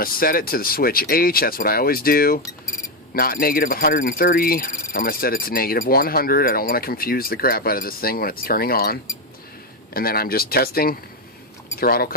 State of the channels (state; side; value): normal; both; correlation 0.07